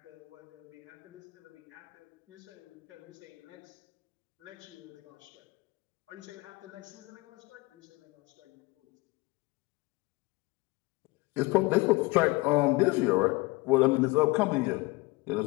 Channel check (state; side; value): quieter; right; 23.5 dB